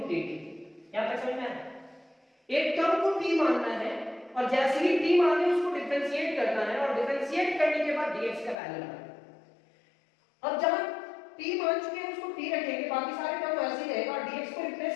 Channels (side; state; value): right; drops out; at 8.6 s